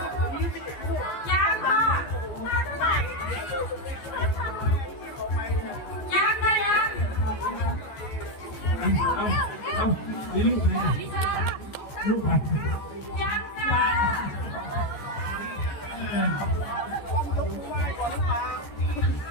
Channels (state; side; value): late; right; 14 ms